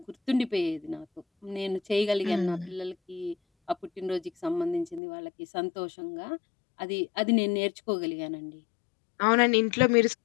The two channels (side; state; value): right; drops out; at 5.0 s